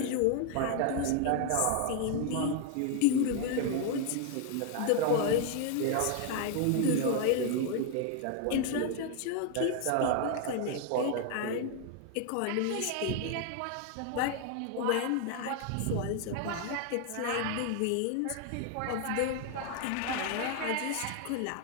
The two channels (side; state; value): both; different; correlation 0.01